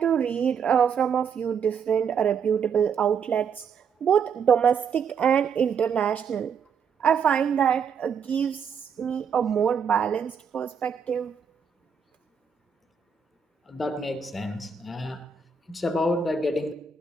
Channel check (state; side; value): quieter; left; 6.5 dB